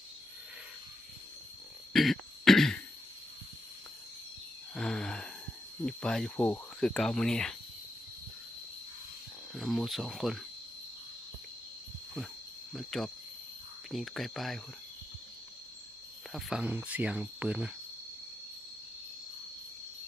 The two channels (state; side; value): normal; both; correlation 0.84